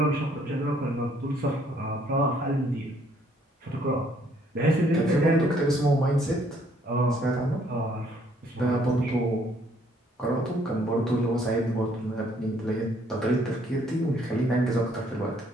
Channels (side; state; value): both; normal; correlation 0.65